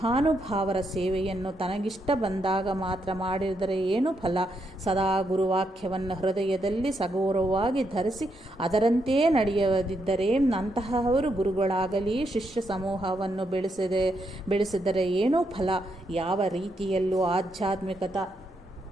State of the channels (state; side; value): normal; both; correlation 0.79